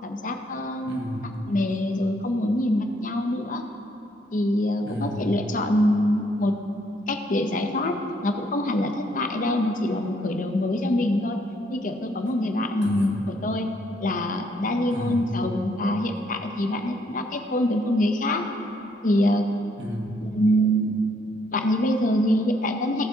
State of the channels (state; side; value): normal; both; correlation 0.69